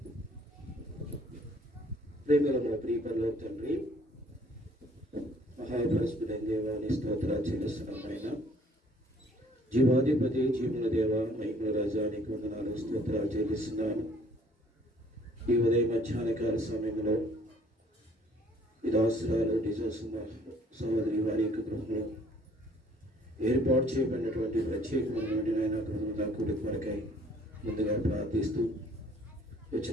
ప్రేమల మా ప్రియ పరలోక తండ్రి, మహాపరిశుద్ధుడైన దేవాన్ని స్తోత్రాలు చెల్లిస్తున్నాం. ఆయన జీవాధిపతి జీవుల దేవ మహిమల రాజా నీకు వందనాలు స్తోత్రాలు చెల్లిస్తున్నాను. ఈ ఉదయం మధ్యాహ్నకాల సమయంలో ఈ దాసురాలు డిజోసుమ సహోదరి వారి యొక్క గృహంలో ఏర్పాటు చేయబడినటువంటి ప్రత్యేకమైనటువంటి నాయన గృహంలో కూడిక వరకై ముందుగా ప్రార్థిస్తూ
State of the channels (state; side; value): normal; both; correlation 0.58